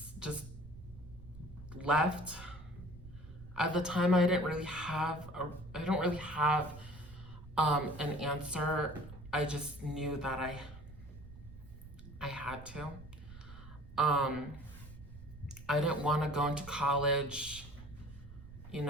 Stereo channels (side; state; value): right; noise; rumble, 16 dB below the sound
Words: just left. At the time, I don't really have an answer. I just knew that I had to. Um, I didn't want to go into college,